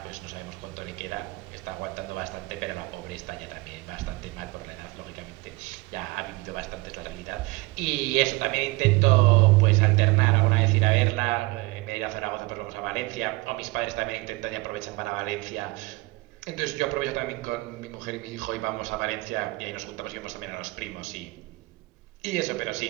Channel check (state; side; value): quieter; left; 22.8 dB